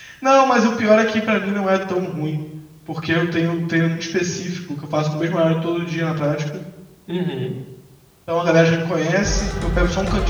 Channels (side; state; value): both; identical; correlation 1.00